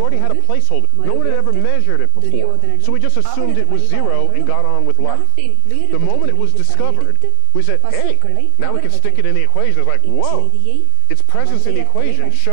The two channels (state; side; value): different; both; correlation 0.00